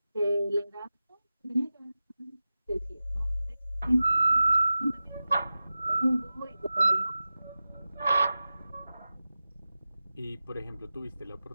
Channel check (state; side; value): inverted; both; correlation -0.95